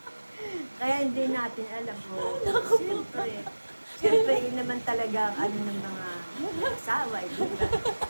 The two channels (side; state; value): both; inverted; correlation -1.00